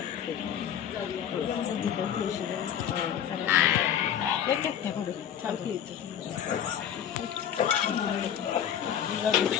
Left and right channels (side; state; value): right; quieter; 9.5 dB